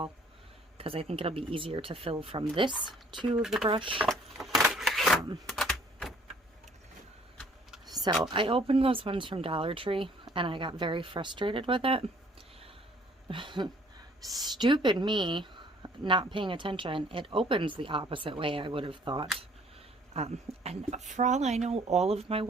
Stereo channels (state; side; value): normal; both; correlation 0.58